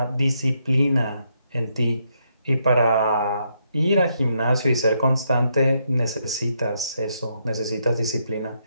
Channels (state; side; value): inverted; both; correlation -0.78